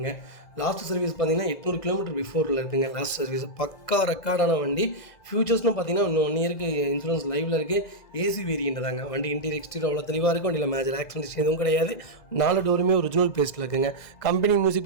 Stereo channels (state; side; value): late; right; 2.0 ms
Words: லாஸ்ட் சர்வீஸ் பார்த்தீங்கன்னா 800 கிலோமீட்டர் பிஃபோரில் இருக்குங்க. லாஸ்ட் சர்வீஸ் பக்கா ரெக்கார்டான வண்டி. ஃபியூச்சர்ஸ்னு பார்த்தீங்கன்னா இன்னும் 1 இயருக்கு இன்சூரன்ஸ் லைவில் இருக்குது. ஏசி வேரியண்ட் தாங்க. வண்டி இன்டீரியர் எக்ஸ்டீரியர் அவ்வளோ தெளிவாக இருக்கும். வண்டியில் மேஜர் ஆக்சிடென்ட்ஸ் எதுவும் கிடையாது. 4 டோருமே ஒரிஜினல் பேஸ்ட்டில் இருக்குங்க. கம்பெனி மியூசிக்